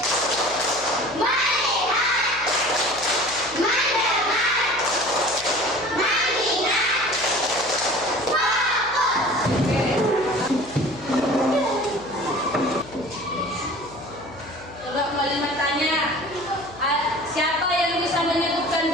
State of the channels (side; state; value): left; noise; hum, 19 dB below the sound